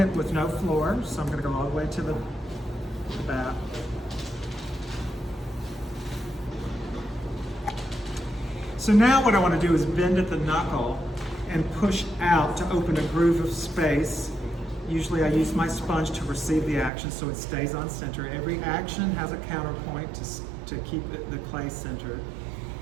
with no floor. So I'm going to go all the way to the back. So now what I want to do is bend at the knuckle and push out to open a groove of space. Usually I use my sponge to receive the action so it stays on center. Every action has a counterpoint to keep the clay centered.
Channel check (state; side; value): drops out; left; at 16.9 s